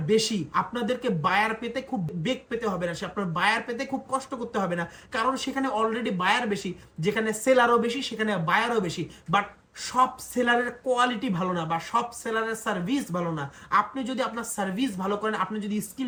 বেশি। আপনাদেরকে বায়ার পেতে খুব বেগ পেতে হবে না, আপনার বায়ার পেতে খুব কষ্ট করতে হবে না, কারণ সেখানে অলরেডি বায়ার বেশি। যেখানে সেলারও বেশি, সেখানে বায়ারও বেশি। বাট সব সেলারের কোয়ালিটি ভালো না, বা সব সেলারের সার্ভিস ভালো না। আপনি যদি আপনার সার্ভিস ভালো করেন, আপনি যদি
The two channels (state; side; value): identical; both; correlation 1.00